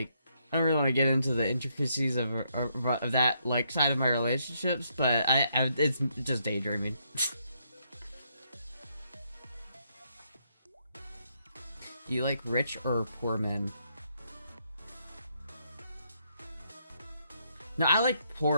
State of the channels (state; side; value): inverted; both; correlation -0.75